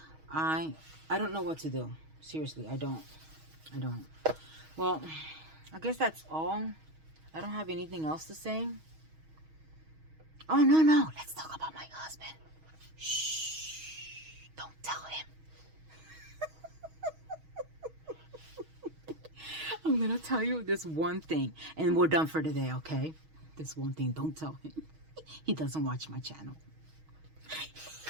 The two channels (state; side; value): late; left; 6.3 ms